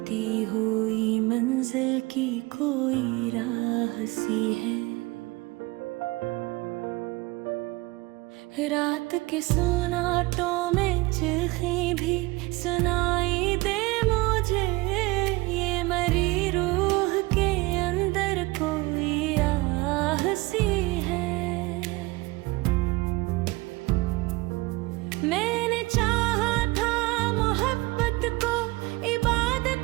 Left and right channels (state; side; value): quieter; left; 22.5 dB